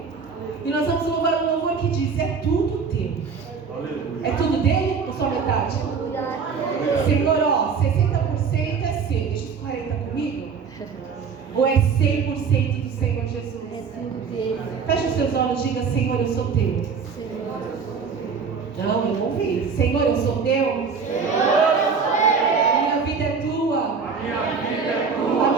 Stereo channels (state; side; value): quieter; left; 5.6 dB